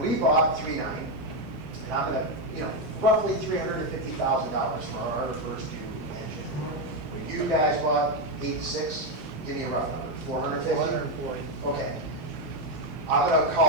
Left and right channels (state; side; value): normal; both; correlation 0.06